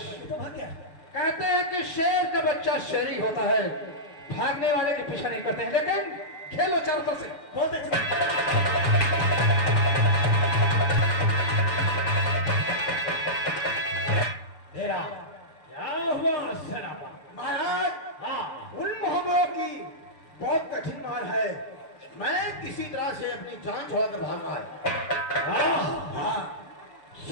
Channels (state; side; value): late; right; 6.9 ms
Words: तो भाग गया कहते हैं कि शेर का बच्चा शेरी होता है भागने वाले के पीछा नहीं करते हैं लेकिन खेलो चारों तरफ से बहुत अच्छा तेरा क्या हुआ सराबा महाराज हाँ उन मोहब्बों की बहुत कठिन मार है मैं किसी तरह से अपनी जान छोड़कर भागा है हाँ